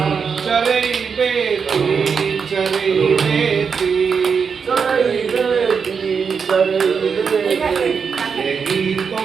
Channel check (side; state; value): left; quieter; 6.0 dB